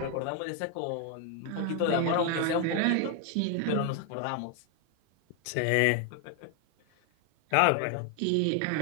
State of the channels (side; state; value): both; different; correlation 0.01